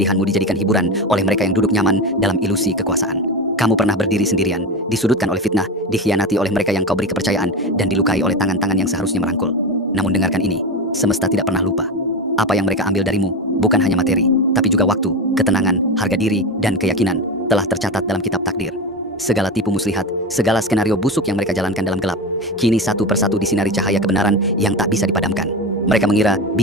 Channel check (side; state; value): both; normal; correlation 0.22